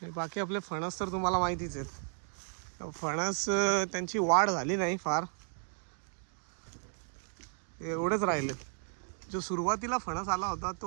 बाकी आपले फणस तर तुम्हाला माहितीच आहेत। फणस त्यांची वाढ झाली नाही फार, एवढेच राहिले। जो सुरुवातीला फणस आला होता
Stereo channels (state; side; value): silent; left; 55 dB below the other